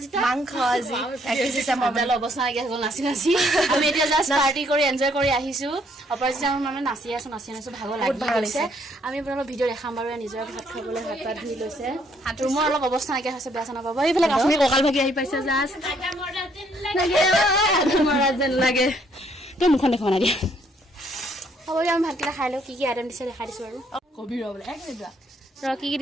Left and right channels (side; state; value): both; normal; correlation 0.68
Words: মাংস আজি 31 ডিসেম্বৰ মজা অৱস্থা লাগি আছে নাচি নাচি আমি এতিয়া জাস্ট পাৰ্টি কৰি এনজয় কৰি আহিছো অপৰাজিতা মানে নাচি আছো ভাগৰ লাগি গৈছে আমি আপোনালোকক ভিডিঅ' দেখাম বাৰু নিজৰ ভাত খাবলৈ হাত পাত ধুই লৈছে ৰুমৰ অলপ অৱস্থা নাকি হৈছে বেয়া চানা পাব এইফালে কাশ্মীৰ ককাল ভাগি আহি পাইছে জাস্ট মৰা যেন লাগে তই মুখন দেখা না দিয়া হ'ব আমি ভাতকেইটা খাই লওঁ কি কি আইটেম দিছে দেখাই দিছো আৰু কবি ৰ বোলে এক মিনিট ৰ কি কি